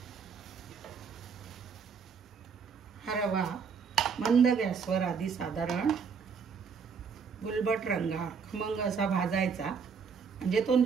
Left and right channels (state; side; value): quieter; left; 6.0 dB